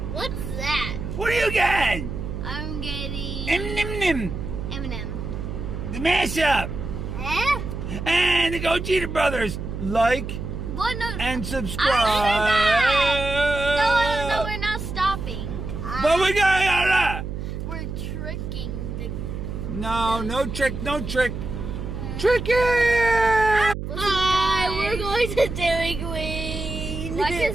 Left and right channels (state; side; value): noise; right; hum, 6 dB below the sound